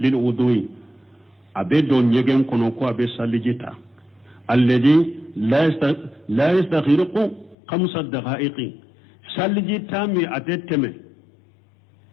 للوضوء أبي دون يجن كنوكو أبي سالجيتا الذي لا يستغرق 5 دقائق سالجيتا مي أتتمي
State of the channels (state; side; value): drops out; right; at 7.6 s